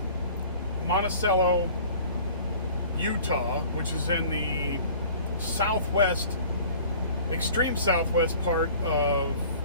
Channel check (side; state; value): both; inverted; correlation -0.47